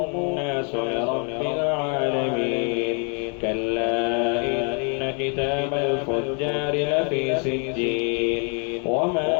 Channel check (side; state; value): right; quieter; 39.3 dB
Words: الناس لرب العالمين. كلا إن كتاب الفجار لفي سجين وما